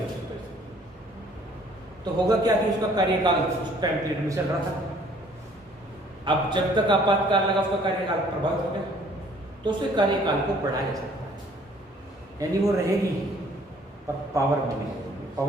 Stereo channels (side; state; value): both; normal; correlation 0.58